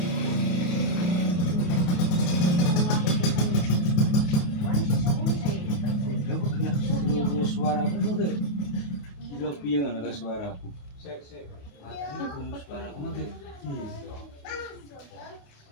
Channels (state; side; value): late; right; 28 ms